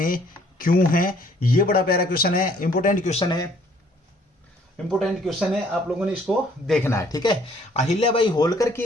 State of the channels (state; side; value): normal; both; correlation 0.61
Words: क्यों है? ये बड़ा प्यारा क्वेश्चन है, इंपॉर्टेंट क्वेश्चन है, आप लोगों ने इसको देखना है, ठीक है। अहिल्याबाई होलकर